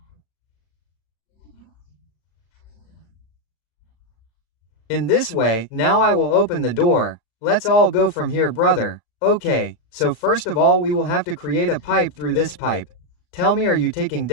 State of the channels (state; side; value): late; right; 36 ms